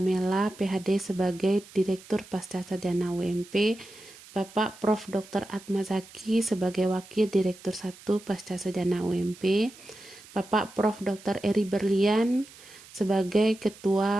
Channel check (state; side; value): noise; right; hiss, 21 dB below the sound